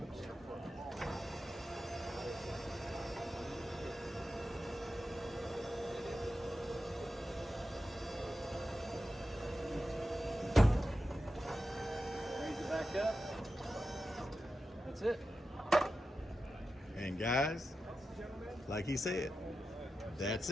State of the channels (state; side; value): normal; both; correlation 0.91